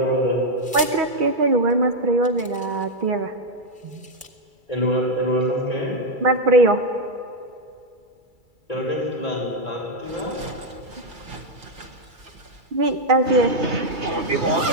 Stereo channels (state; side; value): late; left; 2.3 ms